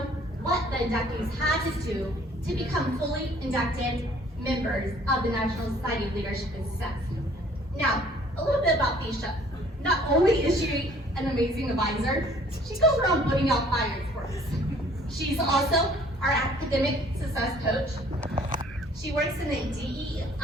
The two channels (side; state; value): both; normal; correlation 0.56